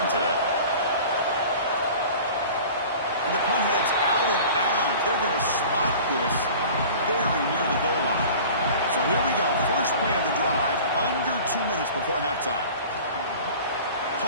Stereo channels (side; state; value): both; inverted; correlation -0.42